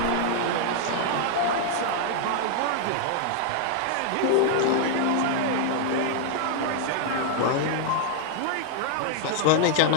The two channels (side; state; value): both; different; correlation 0.00